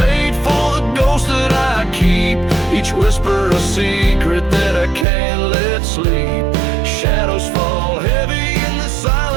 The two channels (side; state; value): left; drops out; at 5.1 s